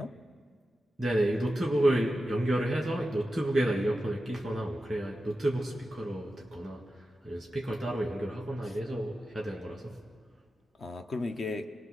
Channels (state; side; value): normal; both; correlation 0.92